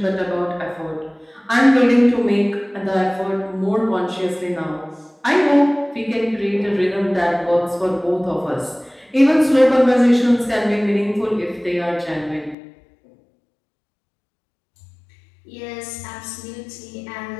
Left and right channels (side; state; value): right; drops out; at 12.6 s